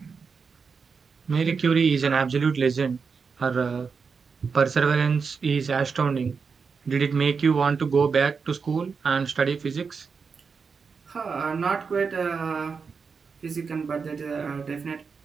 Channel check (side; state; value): left; quieter; 5.4 dB